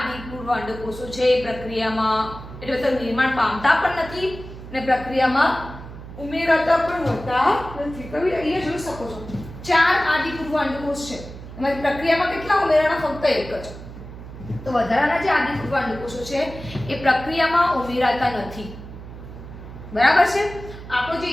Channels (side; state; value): right; noise; hum, 13 dB below the sound